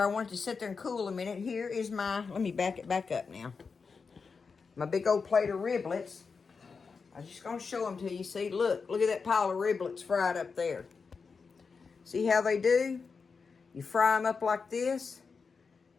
I want it to sit there and cool a minute. Here is my, let me back it back up now. My big old plate of riblets. I'm just going to show them to you. See, look at that pile of riblets fried up there. See how they do? You fry them up like this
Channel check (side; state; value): right; quieter; 5.1 dB